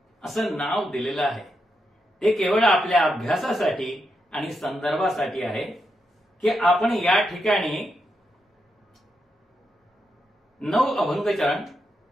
असं नाव दिलेलं आहे. ते केवळ आपल्या अभ्यासासाठी आणि संदर्भासाठी आहे की आपण या ठिकाणी 9 अभंग चरण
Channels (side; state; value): both; normal; correlation 0.84